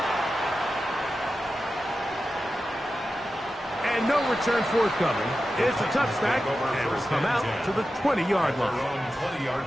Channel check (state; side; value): normal; both; correlation 0.92